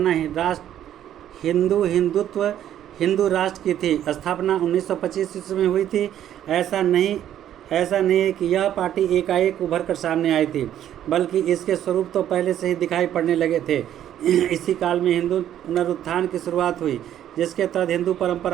है हिंदू राष्ट्र की थी। स्थापना 1925 ईस्वी में हुई थी। ऐसा नहीं है कि यह पार्टी एकाएक उभर कर सामने आई थी, बल्कि इसके स्वरूप तो पहले से ही दिखाई पड़ने लगे थे। इसी काल में हिंदू पुनरुत्थान की शुरुआत हुई, जिसके तहत हिंदू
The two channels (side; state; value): left; quieter; 11.1 dB